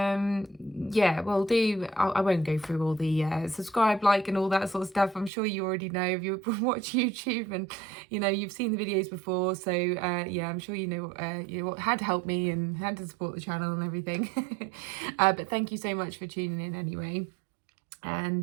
well, I won't go through all the subscribe, like, and all that sort of stuff. I'm sure you already know if you watch YouTube, and you've seen the videos before. So yeah, I'm sure you know how to help me and how to support the channel and everything. But thank you so much for tuning in anyway.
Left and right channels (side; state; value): left; drops out; at 5.3 s